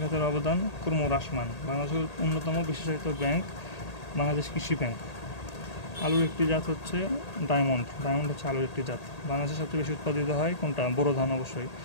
খাতের অবদান ক্রমহ্রাসমান। বাংলাদেশের অন্যতম বিশেষায়িত ব্যাংক বাংলাদেশ কৃষি ব্যাংক। আলুর একটি জাত হচ্ছে ডায়মন্ড হচ্ছে আলুর একটি জাত। বাংলাদেশে সবচেয়ে বেশি উৎপাদিত হয় কোনটা? বোরো ধান, অবশ্যই।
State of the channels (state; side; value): late; right; 1.8 ms